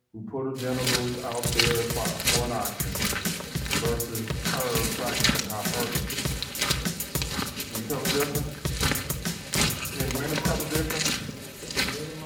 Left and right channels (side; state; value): both; identical; correlation 1.00